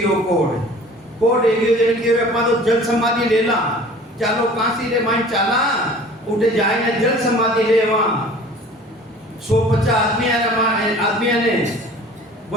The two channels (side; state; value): both; normal; correlation 0.46